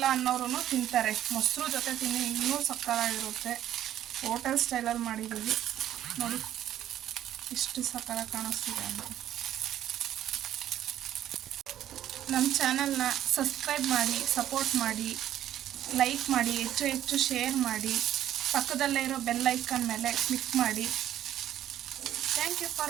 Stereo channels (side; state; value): left; quieter; 11.8 dB